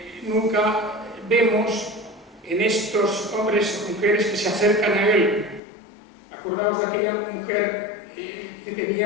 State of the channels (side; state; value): right; drops out; at 5.6 s